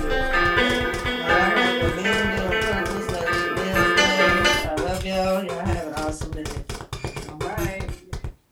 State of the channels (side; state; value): both; identical; correlation 1.00